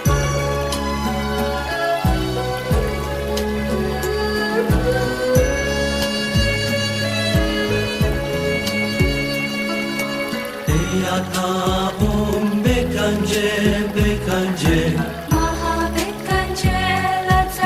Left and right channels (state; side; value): identical; both; correlation 1.00